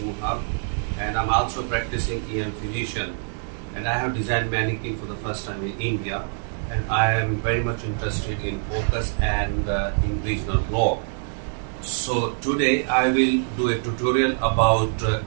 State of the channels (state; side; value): silent; left; 62 dB below the other